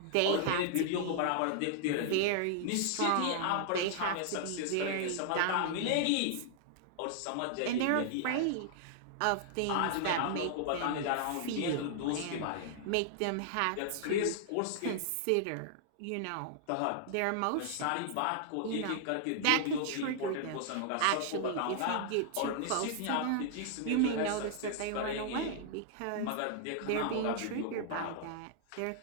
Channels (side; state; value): both; different; correlation -0.01